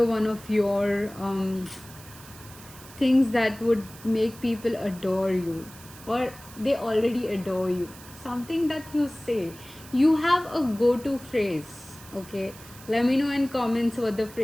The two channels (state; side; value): noise; right; hiss, 19 dB below the sound